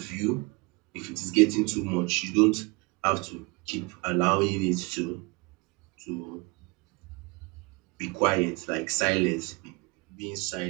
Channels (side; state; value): left; quieter; 27.5 dB